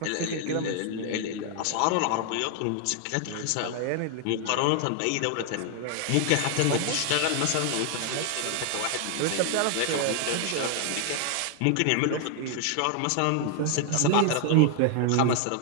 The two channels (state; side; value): different; both; correlation 0.00